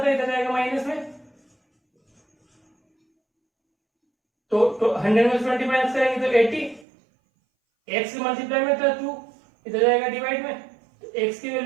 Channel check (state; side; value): drops out; left; at 6.9 s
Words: था, इधर जाएगा माइनस में, तो 100 में 20 माइनस करेंगे तो 80। x के मल्टीप्लाई में था 2, इधर जाएगा डिवाइड में, तो x की